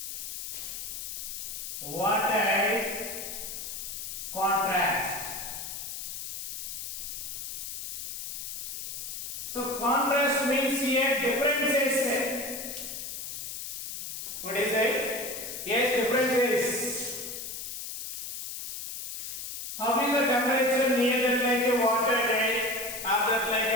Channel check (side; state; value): left; noise; hiss, 7 dB below the sound